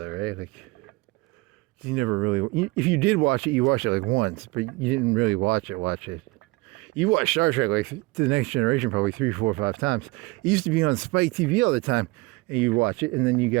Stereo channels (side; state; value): left; quieter; 23.5 dB